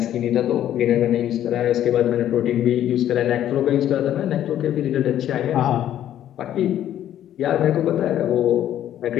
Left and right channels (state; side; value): quieter; right; 11.4 dB